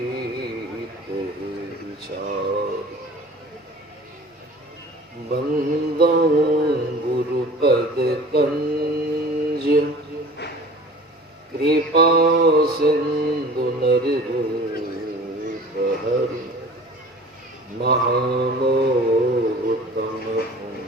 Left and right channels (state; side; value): normal; both; correlation 0.43